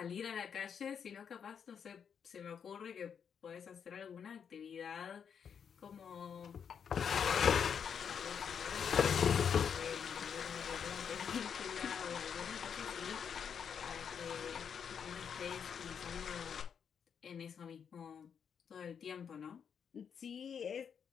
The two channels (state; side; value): quieter; right; 7.3 dB